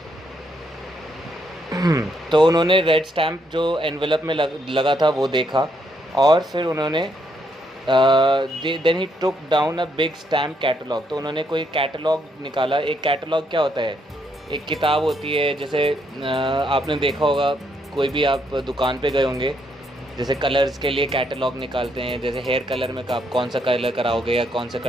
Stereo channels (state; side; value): normal; both; correlation 0.75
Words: तो उन्होंने रेड स्टैम्प जो एनवेलप में लगा था वो देखा, और फिर उन्होंने then he took down a big stamp catalogue. तो उन्होंने कोई कैटलॉग निकाला। एक कैटलॉग क्या होता है? एक किताब होती है, जैसे आपने देखा होगा, कोई भी आप दुकान पे गए होंगे, जैसे कलर्स के लिए कैटलॉग निकालते हैं, जैसे हेयर कलर में आप कौन सा कलर कराओगे या कौन सा